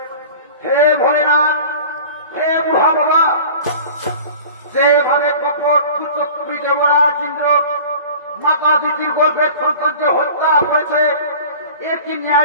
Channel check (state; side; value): inverted; both; correlation -0.41